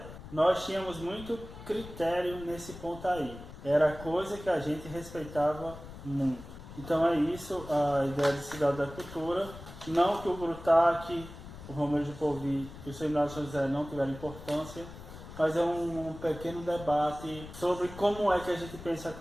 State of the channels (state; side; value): noise; left; rumble, 14 dB below the sound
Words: Nós tínhamos muito critério nesse ponto aí. Era coisa que a gente respeitava muito. Então é isso, a ideia de Cidade da Cultura. Não que o Grutac, o Romeu de Povi e o Seminário São José não tiveram importância, mas é um pequeno debate sobre como é que a gente pensa